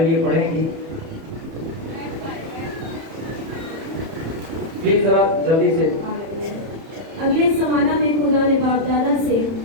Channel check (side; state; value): left; late; 30 ms